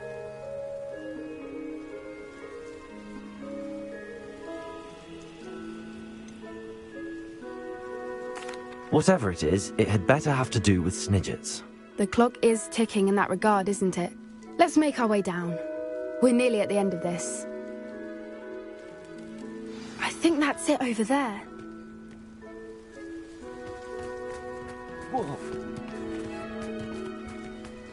Whatever it is, it had better have to do with Snidgets. The clock is ticking in that regard, isn't it? Let's make our way down. We're nearly at the end of this. I think that's it over there. Whoa.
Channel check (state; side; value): identical; both; correlation 1.00